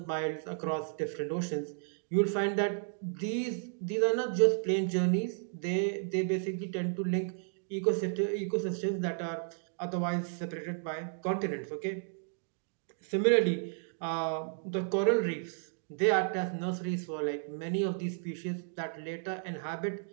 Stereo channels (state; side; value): silent; left; digital silence